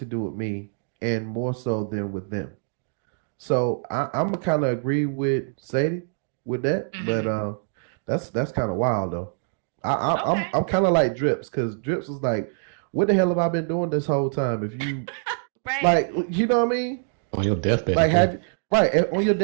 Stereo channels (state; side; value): silent; left; digital silence